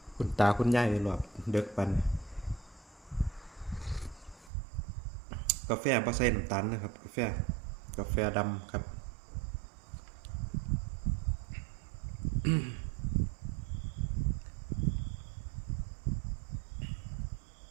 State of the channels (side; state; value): left; drops out; at 4.5 s